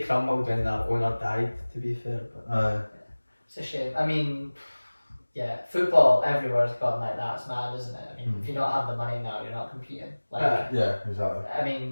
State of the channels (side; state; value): both; inverted; correlation -1.00